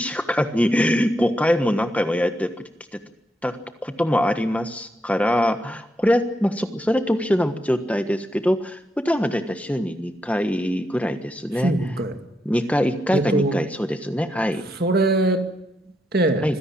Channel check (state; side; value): normal; both; correlation 0.81